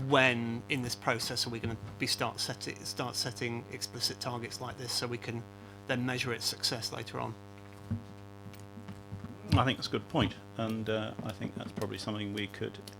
when in this process are we going to be start setting explicit targets like this, so we can then measure its success later on. I think that's a good point, and I think that's probably something we could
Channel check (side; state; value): both; identical; correlation 1.00